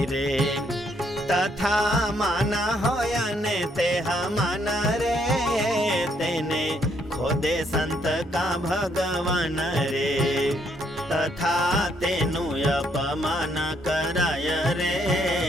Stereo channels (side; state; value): both; normal; correlation 0.71